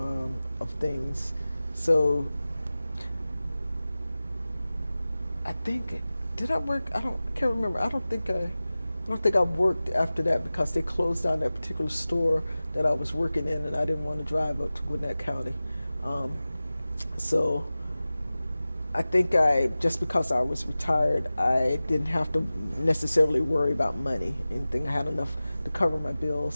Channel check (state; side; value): inverted; both; correlation -0.96